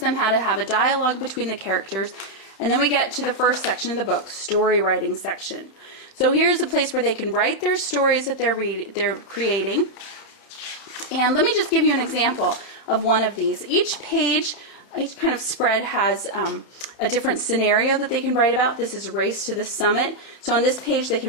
how to have a dialogue between the characters. And then we get to the first section of the book, story writing section. So here's a place where they can write their stories that they're creating. And let me just give you an example of one of these. Each page, each kind of spread has a different scenario that they can write about. This is Race to the Summit. So on this page they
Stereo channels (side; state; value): right; late; 31 ms